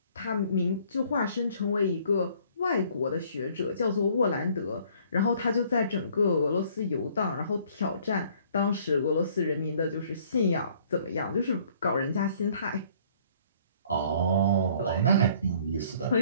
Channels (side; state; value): both; inverted; correlation -0.59